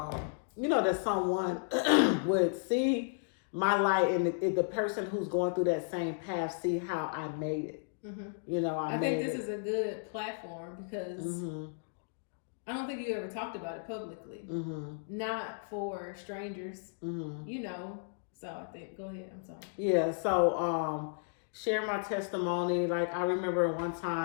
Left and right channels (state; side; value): silent; right; digital silence